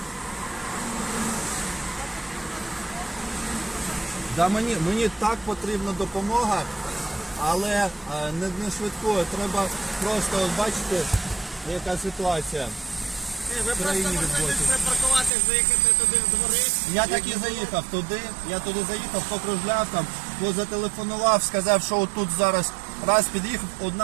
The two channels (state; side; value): drops out; left; at 15.3 s